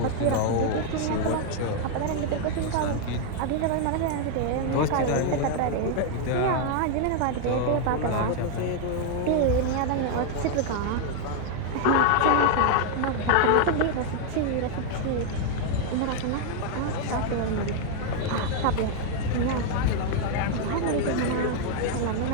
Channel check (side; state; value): both; different; correlation 0.00